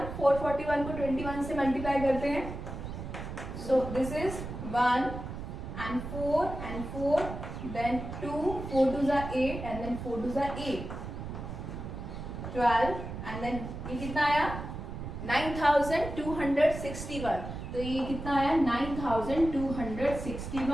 441 को 21 से मल्टीप्लाई करते हैं। So this is 1 and 4 then 2 4 2 ज़ा 8 and then 4 2 ज़ा 8 12 and then ये कितना आया 9261। तो ये कितना आया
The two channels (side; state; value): right; noise; rumble, 8 dB below the sound